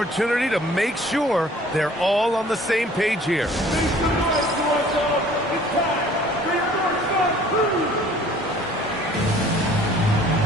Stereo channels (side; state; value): both; normal; correlation 0.53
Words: to make sure they're all on the same page here.